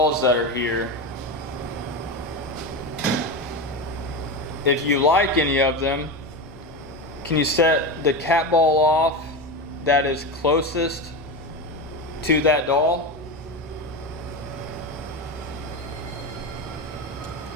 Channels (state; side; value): normal; both; correlation 0.19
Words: that are here. If you like any of them, can you set the cat ball off that is closest to that doll?